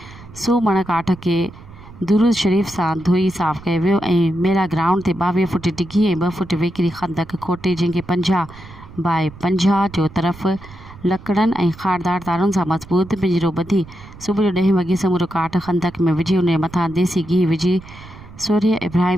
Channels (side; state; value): right; noise; rumble, 18 dB below the sound